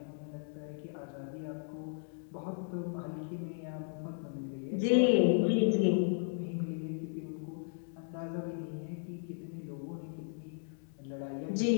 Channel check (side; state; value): right; silent; digital silence